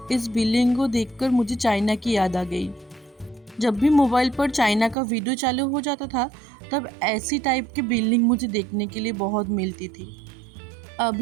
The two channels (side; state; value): left; drops out; at 5.0 s